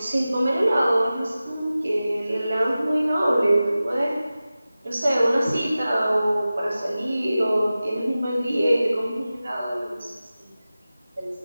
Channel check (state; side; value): inverted; both; correlation -0.95